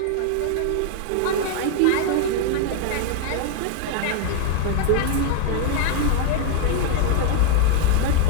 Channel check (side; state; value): both; different; correlation 0.01